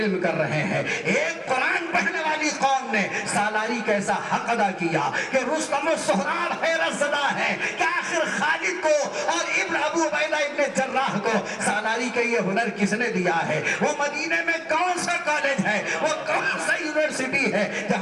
کر رہے ہیں۔ ایک قرآن پڑھنے والی قوم نے سالاری کا ایسا حق ادا کیا کہ رستم و سہراب حیرت زدہ ہے کہ آخر خالد کو اور ابن ابو عبیدہ ابن جراح کو سالاری کا یہ ہنر کس نے دیا ہے؟ وہ مدینے میں کون سا کالج ہے، وہ کون سا یونیورسٹی ہے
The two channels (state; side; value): identical; both; correlation 1.00